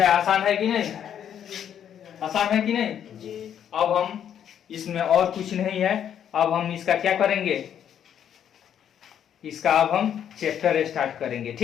आसान है कि नहीं? आसान है कि नहीं जी। अब हम इसमें और कुछ नहीं है, अब हम इसका क्या करेंगे, इसका अब हम चैप्टर स्टार्ट करेंगे।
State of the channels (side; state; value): right; quieter; 9.3 dB